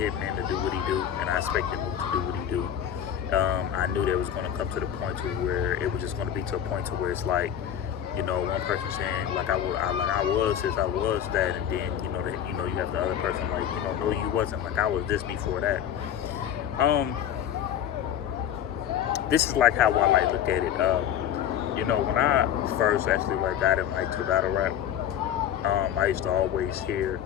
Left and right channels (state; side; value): quieter; right; 9.9 dB